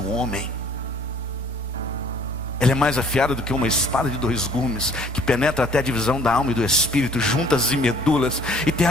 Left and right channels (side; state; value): both; normal; correlation 0.56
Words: homem. Ela é mais afiada do que uma espada de 2 gumes, que penetra até a divisão da alma e do espírito, juntas e medulas, e tem